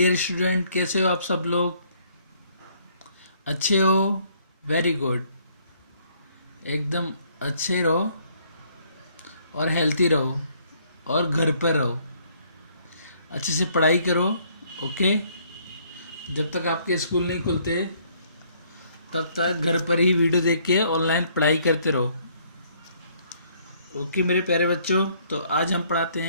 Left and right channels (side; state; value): both; inverted; correlation -0.65